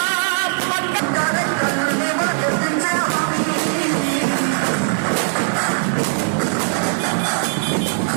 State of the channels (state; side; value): silent; left; digital silence